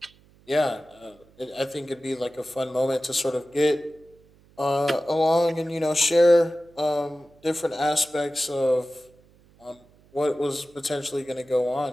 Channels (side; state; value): right; noise; hum, 29 dB below the sound